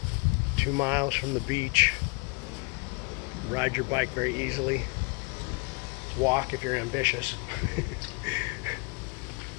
2 miles from the beach. Ride your bike very easily. Walk if you're ambitious.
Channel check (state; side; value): quieter; right; 30.3 dB